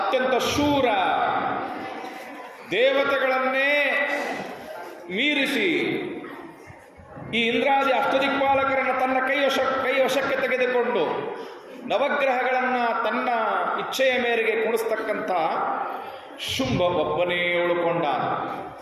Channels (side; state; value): both; identical; correlation 1.00